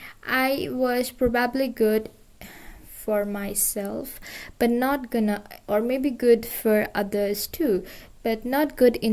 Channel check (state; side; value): identical; both; correlation 1.00